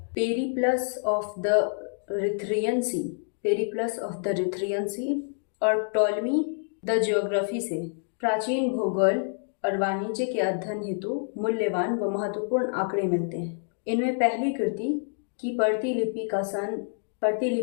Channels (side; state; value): right; silent; digital silence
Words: पेरिप्लस ऑफ द रिथ्रियन सी और टॉलमी द ज्योग्राफी से प्राचीन भूगोल और वाणिज्य के अध्ययन हेतु मूल्यवान व महत्वपूर्ण आंकड़े मिलते हैं। इनमें पहली कृति की प्रतिलिपि